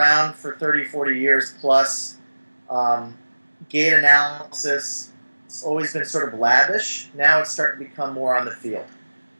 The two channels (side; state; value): both; inverted; correlation -1.00